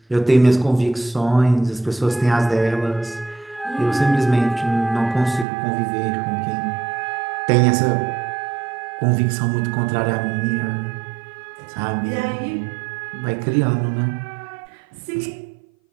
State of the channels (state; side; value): drops out; left; at 5.5 s